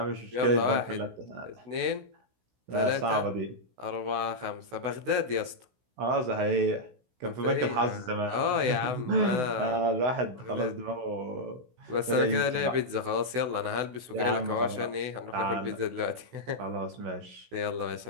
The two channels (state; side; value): late; left; 16 ms